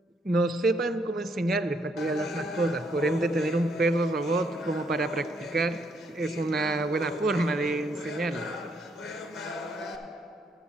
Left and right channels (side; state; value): both; normal; correlation 0.72